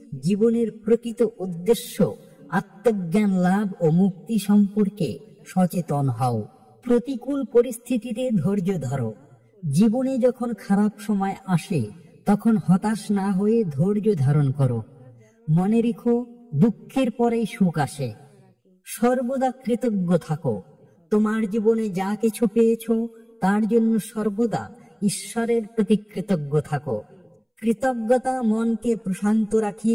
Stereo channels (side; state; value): both; identical; correlation 1.00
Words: জীবনের প্রকৃত উদ্দেশ্য আত্মজ্ঞান লাভ ও মুক্তি সম্পর্কে সচেতন হও। প্রতিকূল পরিস্থিতিতে ধৈর্য ধরো। জীবনে যখন খারাপ সময় আসে তখন হতাশ না হয়ে ধৈর্য ধারণ করো। মনে রেখো, দুঃখের পরেই সুখ আসে। সর্বদা কৃতজ্ঞ থাকো। তোমার জীবনে যা কিছু পেয়েছো তার জন্য সর্বদা ঈশ্বরের প্রতি কৃতজ্ঞ থাকো। কৃতজ্ঞতা মনকে প্রশান্ত